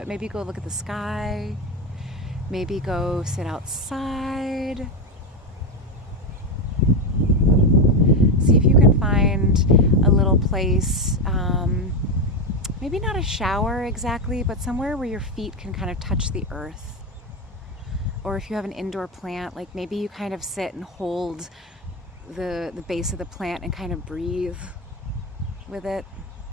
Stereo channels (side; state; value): both; normal; correlation 0.12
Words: maybe go look at the sky. Maybe go sit outside. See if you can find a little place, maybe not a shower exactly, but somewhere where your feet can kind of touch the earth. Or if you have an indoor plant, like maybe you kind of sit and hold the base of the plant and kind of breathe with it.